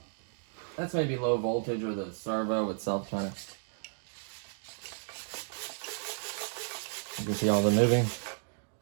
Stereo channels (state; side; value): silent; left; digital silence